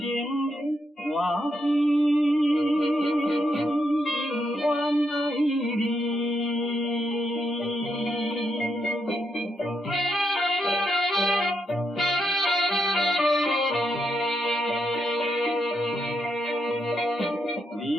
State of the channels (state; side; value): normal; both; correlation 0.81